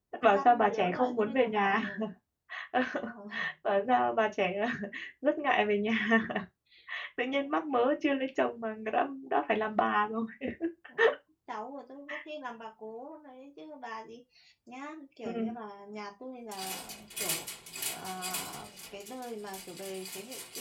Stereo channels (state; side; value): identical; both; correlation 1.00